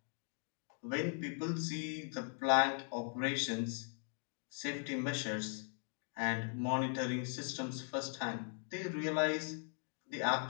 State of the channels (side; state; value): right; silent; 51 dB below the other